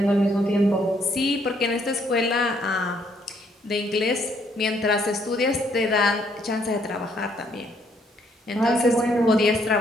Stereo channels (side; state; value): both; normal; correlation 0.69